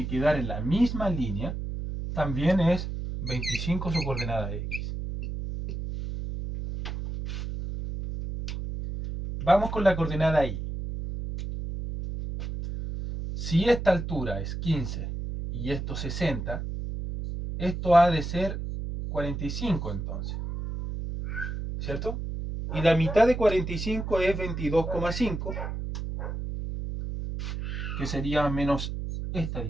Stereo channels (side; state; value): right; noise; hum, 5 dB below the sound